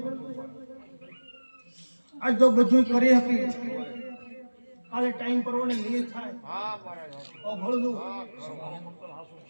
આજ તો બધું કરી હતી કાલે ટાઈમ પરવાને નહીં થાય હોંભળજો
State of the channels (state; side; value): inverted; both; correlation -1.00